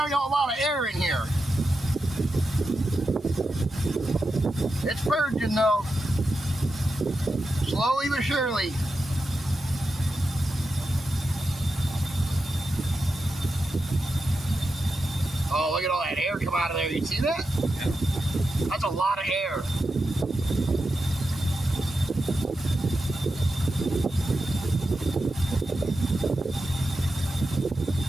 a lot of air in here. It's purging though. Slowly but surely. Oh, look at all that air come out of there. You see that? Yeah. That's a lot of air.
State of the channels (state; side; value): normal; both; correlation 0.89